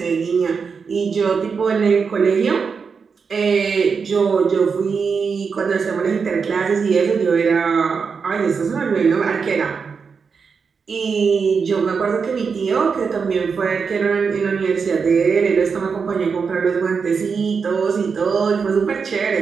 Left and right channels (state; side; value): quieter; left; 5.6 dB